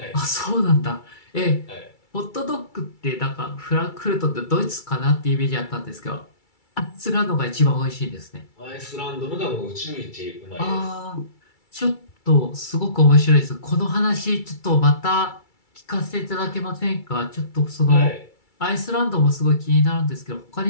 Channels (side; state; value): right; late; 2.3 ms